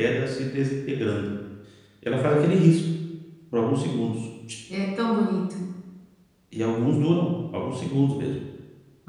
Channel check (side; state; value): both; identical; correlation 1.00